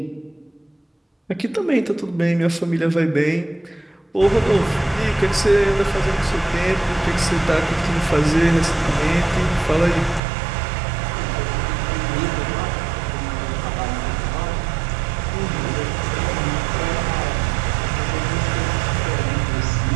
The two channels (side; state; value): left; drops out; at 10.2 s